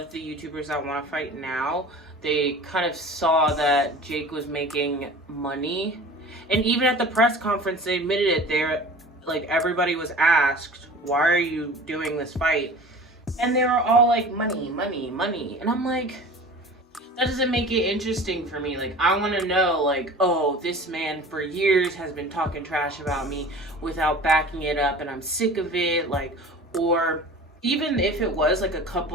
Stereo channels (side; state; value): both; normal; correlation 0.40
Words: the YouTubers that want to fight now, they kind of saw that Jake was making money. And even at the press conference, they admitted it. They're, like, everybody was asked, why are you doing this fight? And they were all like, money, money, money. And I'm like, that doesn't make it interesting for me. Like, I want to know, like, oh, this man for years has been talking trash about me without backing it up, and I'm sick of it. Like, or even if it was like a